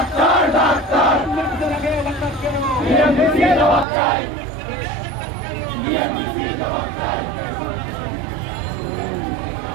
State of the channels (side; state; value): left; drops out; at 3.9 s